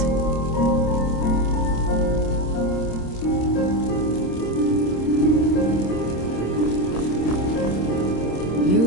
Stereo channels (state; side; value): late; right; 26 ms